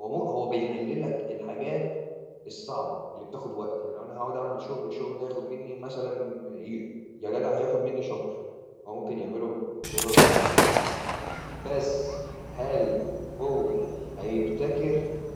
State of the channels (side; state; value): both; identical; correlation 1.00